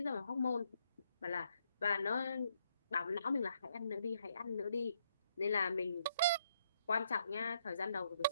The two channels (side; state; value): both; inverted; correlation -0.74